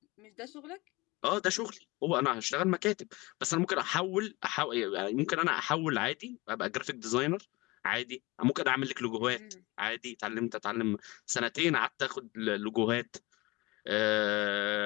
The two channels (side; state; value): right; quieter; 22.8 dB